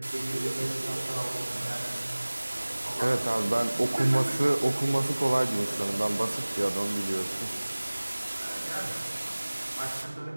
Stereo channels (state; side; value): inverted; both; correlation -1.00